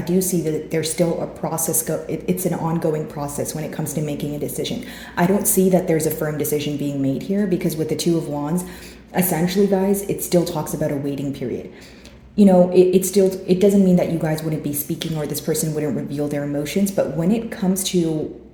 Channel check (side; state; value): both; identical; correlation 1.00